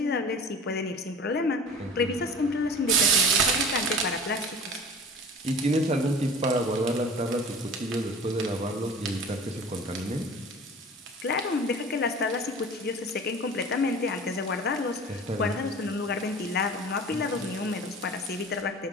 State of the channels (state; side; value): normal; both; correlation 0.40